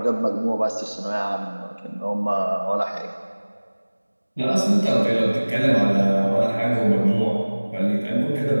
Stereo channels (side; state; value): both; inverted; correlation -1.00